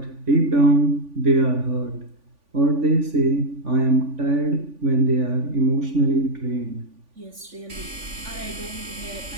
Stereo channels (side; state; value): left; late; 3.5 ms